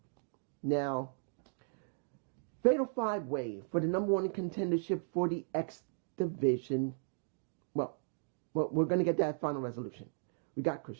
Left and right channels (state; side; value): silent; left; digital silence